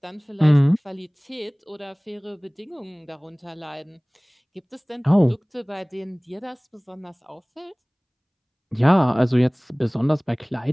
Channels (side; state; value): both; identical; correlation 1.00